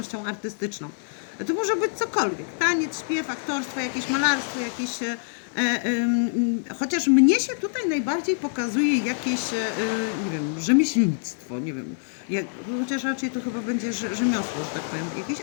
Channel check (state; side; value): silent; right; 61 dB below the other